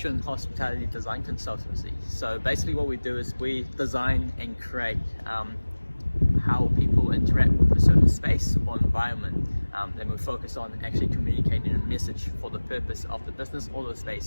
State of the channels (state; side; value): inverted; both; correlation -1.00